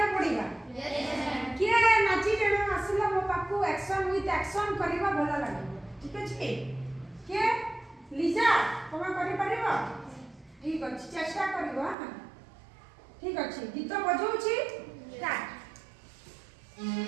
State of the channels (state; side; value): drops out; left; at 12.0 s